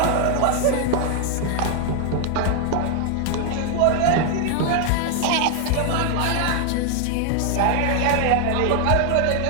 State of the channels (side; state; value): both; different; correlation 0.00